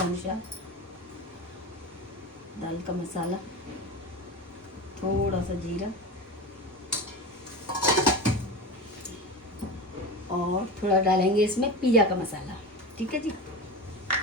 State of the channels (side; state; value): both; normal; correlation 0.27